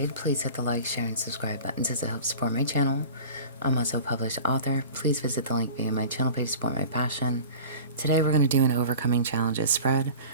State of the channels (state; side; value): inverted; both; correlation -0.38